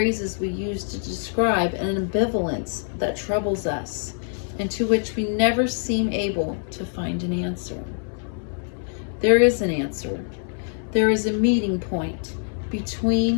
we use to describe an ambivalence that troubles us and to which we never seem able to find an answer. There is an answer. There is a meeting point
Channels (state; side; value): silent; right; 62 dB below the other